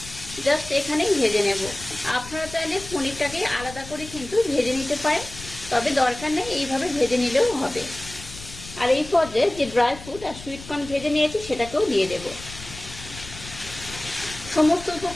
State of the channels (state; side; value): noise; left; rumble, 14 dB below the sound